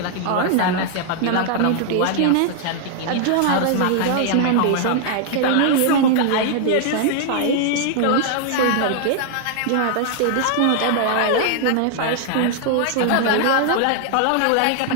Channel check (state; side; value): different; both; correlation 0.00